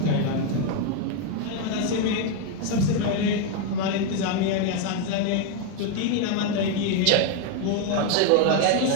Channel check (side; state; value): both; different; correlation 0.01